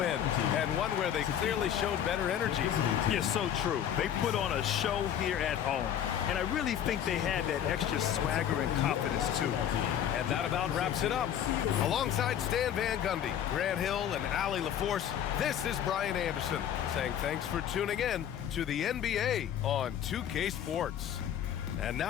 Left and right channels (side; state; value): right; quieter; 9.8 dB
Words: and one where they clearly showed better energy. Yes, so true. They put on a show here at home, and I really think they had that extra swagger and confidence, too. And that about wraps it up. Alongside Stan Van Gundy, Grant Hill, and Allie LaForce, this is Brian Anderson saying thanks for tuning in to the NBA on 2K Sports. And